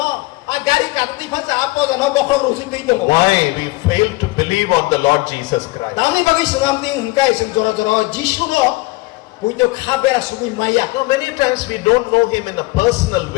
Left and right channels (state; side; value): quieter; right; 22.0 dB